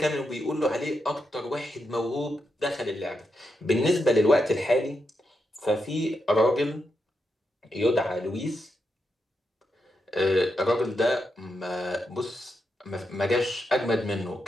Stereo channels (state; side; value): normal; both; correlation 0.85